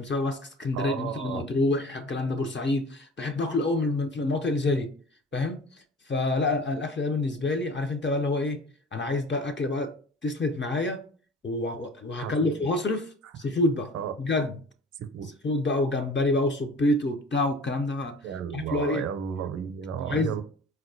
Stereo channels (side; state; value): both; normal; correlation 0.42